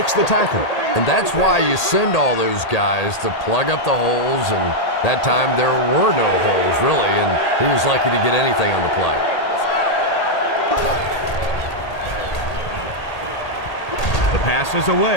the tackle. And that's why you send all those guys to plug up the holes, and that time there were no holes, really, and he was lucky to get anything on the play. The pass is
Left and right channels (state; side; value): late; right; 1.8 ms